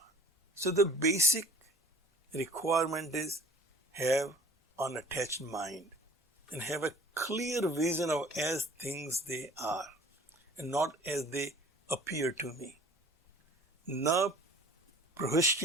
So the basic requirement is have unattached mind and have a clear vision of as things they are and not as they appear to me. Na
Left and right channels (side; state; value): both; normal; correlation 0.47